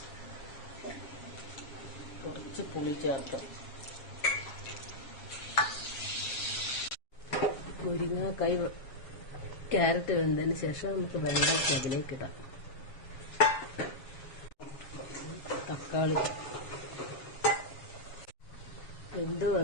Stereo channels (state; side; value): late; right; 7.3 ms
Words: കുറച്ച് പുളി ചേർക്കാം. മുരിങ്ങക്കായ, ക്യാരറ്റ് വെന്തതിന് ശേഷം നമുക്ക് വെള്ളത്തിൽ അതിലേക്ക് ഇടാം. തക്കാളി വെന്ത്